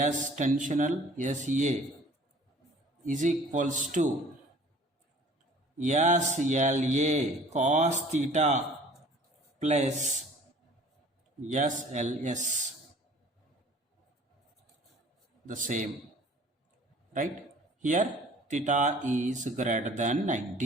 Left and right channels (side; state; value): both; normal; correlation 0.50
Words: tensional SA is equals to SLA cos theta plus SLS. The same, right? Here theta is greater than